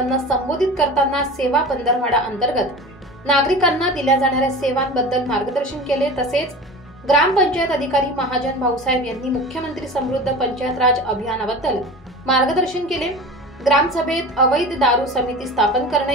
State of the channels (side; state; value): both; normal; correlation 0.34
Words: संबोधित करताना सेवा पंधरवडा अंतर्गत नागरिकांना दिल्या जाणाऱ्या सेवांबद्दल मार्गदर्शन केले। तसेच ग्रामपंचायत अधिकारी महाजन भाऊसाहेब यांनी मुख्यमंत्री समृद्ध पंचायत राज अभियानाबद्दल मार्गदर्शन केले। ग्रामसभेत अवैध दारू समिती स्थापन